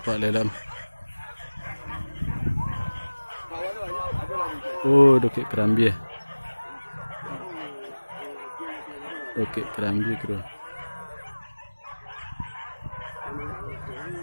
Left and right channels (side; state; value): both; inverted; correlation -1.00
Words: dalam. Oh, dokek kerambi. Dokek kerambi kru.